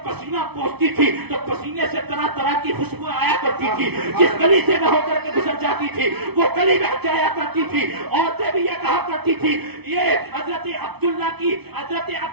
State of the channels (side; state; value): left; late; 0.99 ms